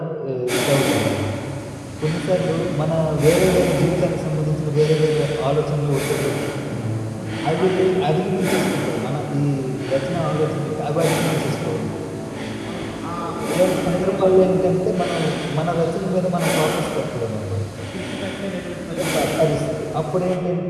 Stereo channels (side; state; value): both; identical; correlation 1.00